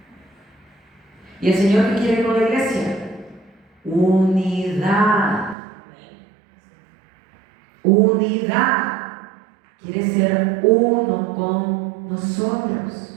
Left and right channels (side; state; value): left; drops out; at 5.6 s